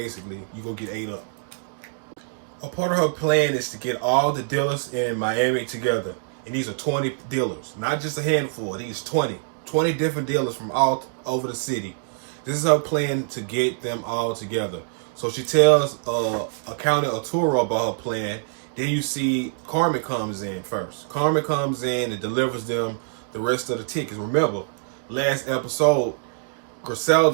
you're going to get ate up. A part of her plan is to get all the dealers in Miami together. And these are 20 dealers, not just a handful. These 20 different dealers from all over the city. This is her plan to get them all together. So she tells Accountant Arturo about her plan. Then you see Carmen comes in first. Carmen comes in and delivers them the rest of the tickets. Remember, last episode,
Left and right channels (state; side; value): silent; left; digital silence